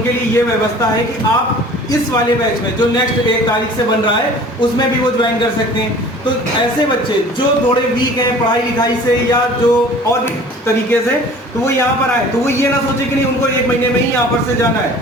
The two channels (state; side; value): normal; both; correlation 0.46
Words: लिए ये व्यवस्था है कि आप इस वाले बैच में जो नेक्स्ट 1 तारीख से बन रहा है उसमें भी वो ज्वाइन कर सकते हैं। तो ऐसे बच्चे जो थोड़े वीक हैं पढ़ाई लिखाई से या जो और भी तरीके से, तो वो यहाँ पर आए, तो वो ये ना सोचे कि नहीं उनको 1 महीने में ही यहाँ पर से जाना है।